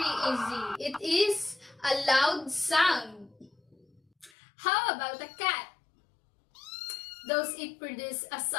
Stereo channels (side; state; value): right; drops out; at 4.3 s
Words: easy. It is a loud sound. How about a cat? Does it produce a